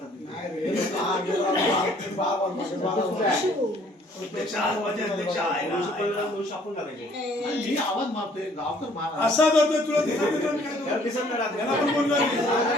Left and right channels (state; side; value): normal; both; correlation 0.60